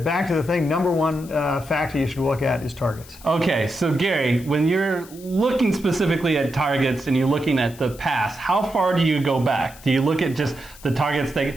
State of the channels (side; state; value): left; noise; hiss, 20 dB below the sound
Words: thing, number one factor you should look at is targets. Okay, so Gary, when you're looking specifically at targets and you're looking at the past, how far do you go back? Do you look at just the targets